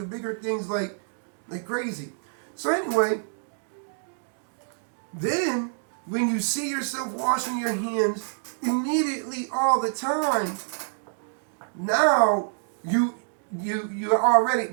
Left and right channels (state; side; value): silent; left; digital silence